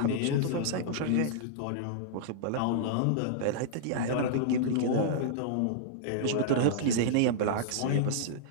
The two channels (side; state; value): both; different; correlation -0.02